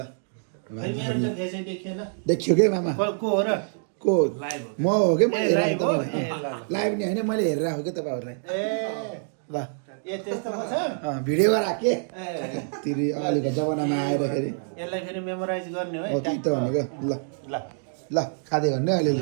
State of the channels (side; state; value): left; silent; digital silence